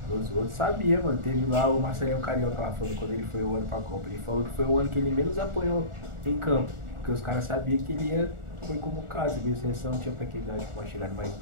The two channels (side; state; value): left; late; 1.4 ms